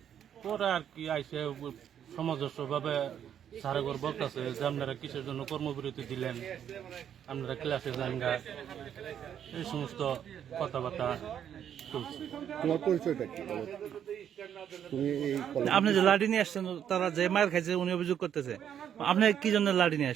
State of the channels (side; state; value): left; quieter; 9.3 dB